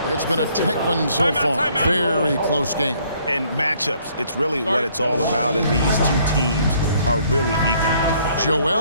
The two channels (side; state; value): both; inverted; correlation -0.64